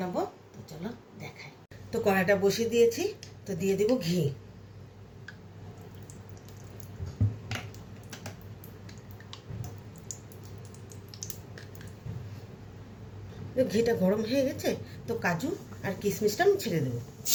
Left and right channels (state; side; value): identical; both; correlation 1.00